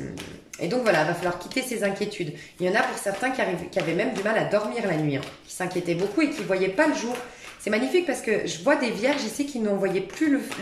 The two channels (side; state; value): both; identical; correlation 1.00